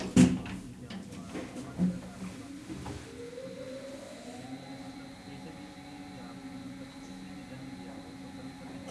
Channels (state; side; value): identical; both; correlation 1.00